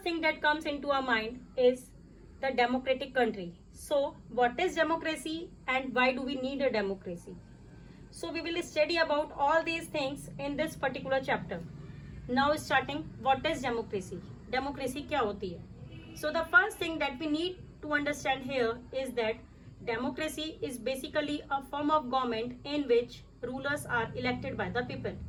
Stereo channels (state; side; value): identical; both; correlation 1.00